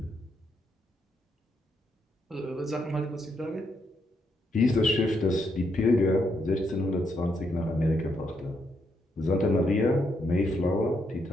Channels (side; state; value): both; normal; correlation 0.78